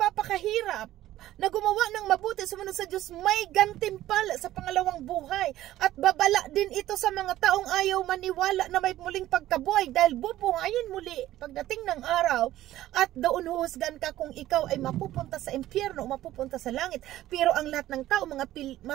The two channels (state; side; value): quieter; left; 14.3 dB